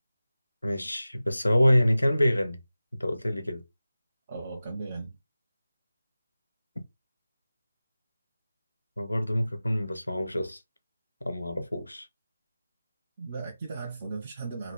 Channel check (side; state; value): both; inverted; correlation -0.96